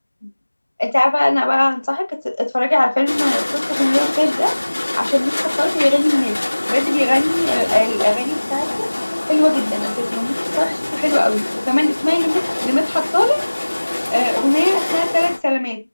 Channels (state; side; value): inverted; both; correlation -1.00